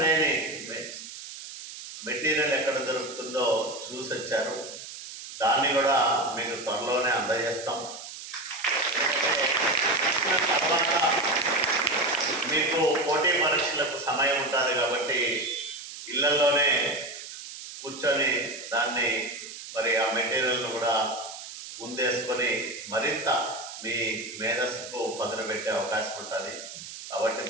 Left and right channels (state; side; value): noise; right; hiss, 12 dB below the sound